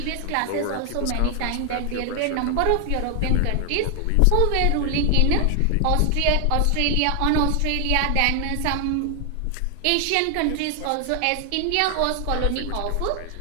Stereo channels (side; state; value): both; different; correlation 0.00